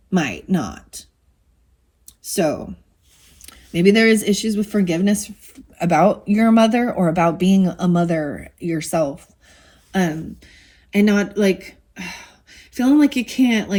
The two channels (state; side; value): identical; both; correlation 1.00